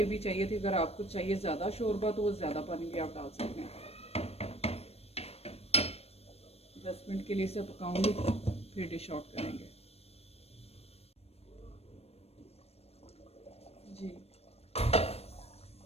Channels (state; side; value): late; right; 0.29 ms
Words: चाहिए थी। अगर आपको चाहिए ज़्यादा शोरबा तो वो ज़्यादा पानी भी आप डाल सकते हैं। 10 मिनट के लिए इसे पकाऊंगी फिर डिश आउट करेंगे। जी